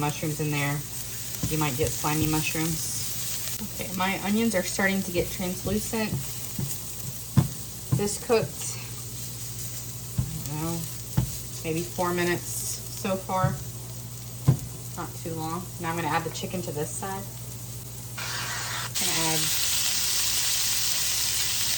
in there, you might get slimy mushrooms. Okay, my onions are starting to get translucent. This cooked, I don't know, maybe 4 minutes so far. Not too long. Now I'm going to add the chicken to this side. I'm going to add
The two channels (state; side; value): identical; both; correlation 1.00